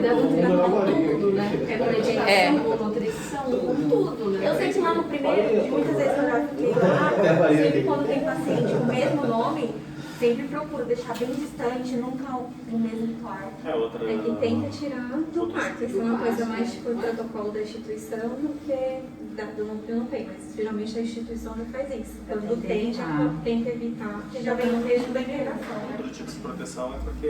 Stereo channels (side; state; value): both; identical; correlation 1.00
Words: com tudo, né? É. Com nutrição, com tudo, né? Eu sei que lá no primeiro, muitas vezes eu já fiquei lá, sempre quando tem paciente com o mesmo nome, sempre procuro deixar bem distante, nunca no mesmo quarto. E tenta tirar do quarto. Isso é uma coisa mais tipo o protocolo da instituição do que do núcleo não tem, mas geralmente a instituição já faz isso. Quando tem, já tenta evitar, porque já vem no mesmo da interação. Outro tipo de proteção é porque